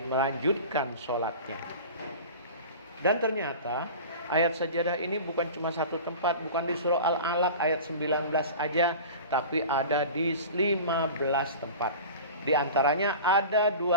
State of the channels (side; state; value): both; inverted; correlation -0.36